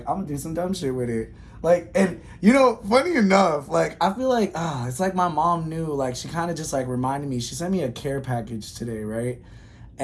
I'm gonna do some dumb shit with it. Like, and funny enough, like I feel like it's like my mom knew. Like she kind of just like reminded me. She sent me a care package today, right?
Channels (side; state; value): both; identical; correlation 1.00